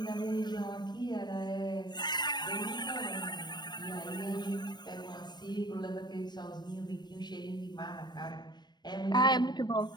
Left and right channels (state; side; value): late; right; 0.21 ms